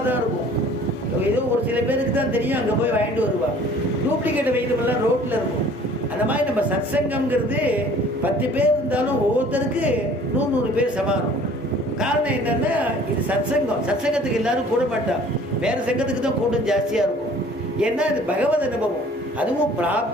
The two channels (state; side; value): normal; both; correlation 0.51